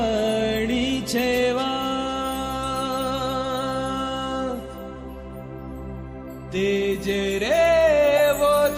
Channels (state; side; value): identical; both; correlation 1.00